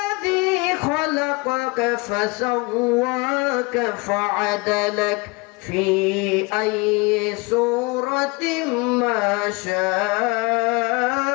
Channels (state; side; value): quieter; right; 26.7 dB